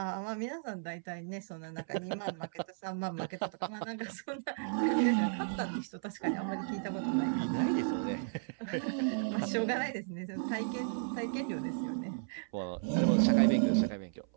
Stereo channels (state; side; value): silent; left; 55 dB below the other